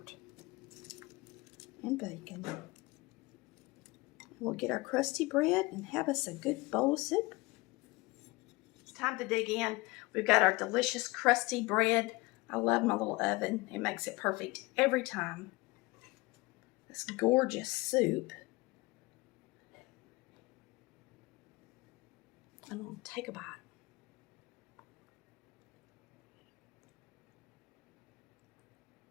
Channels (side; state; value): right; quieter; 23.2 dB